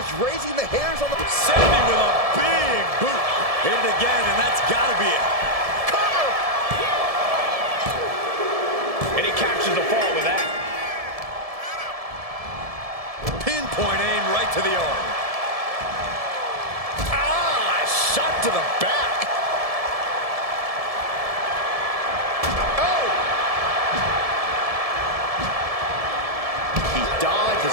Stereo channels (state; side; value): late; left; 1.7 ms